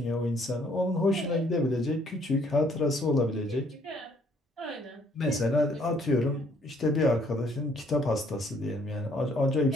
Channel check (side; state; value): both; normal; correlation 0.64